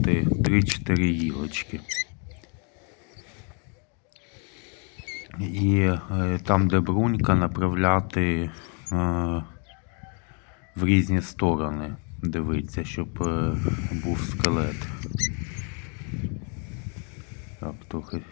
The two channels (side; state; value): right; quieter; 38.0 dB